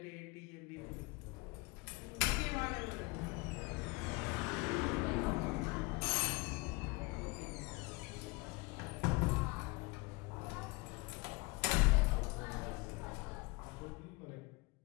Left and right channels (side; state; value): right; quieter; 25.8 dB